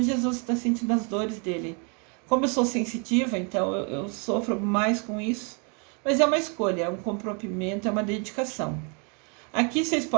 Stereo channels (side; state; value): left; quieter; 35.4 dB